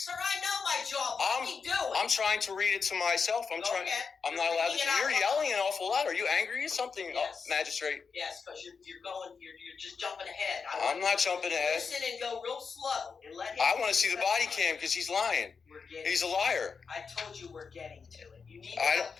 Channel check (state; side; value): quieter; right; 5.5 dB